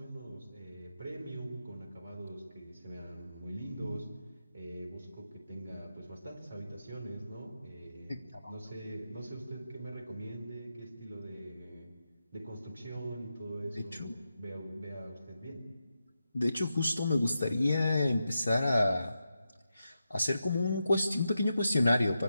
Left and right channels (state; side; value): inverted; both; correlation -0.88